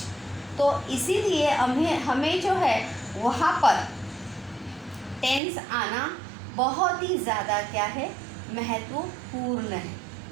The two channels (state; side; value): drops out; left; at 5.4 s